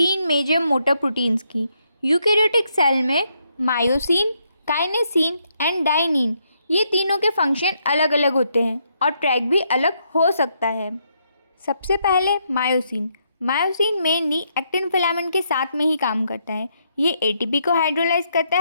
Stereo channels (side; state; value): both; inverted; correlation -0.76